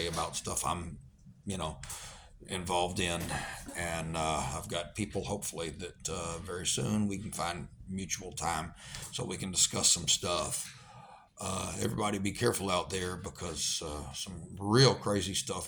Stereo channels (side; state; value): both; identical; correlation 1.00